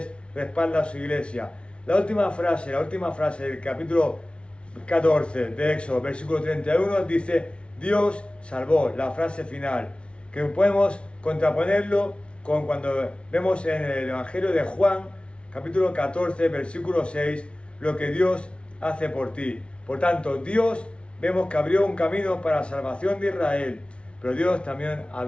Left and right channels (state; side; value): late; right; 0.059 ms